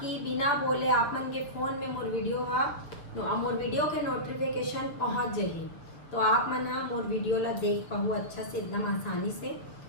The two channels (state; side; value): late; right; 6.5 ms